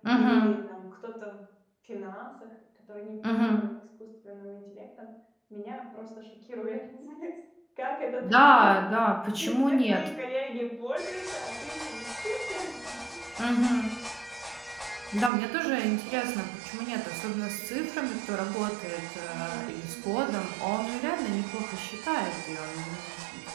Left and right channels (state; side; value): drops out; left; at 15.3 s